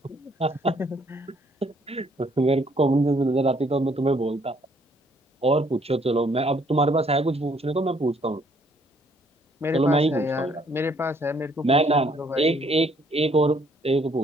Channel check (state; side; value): normal; both; correlation 0.65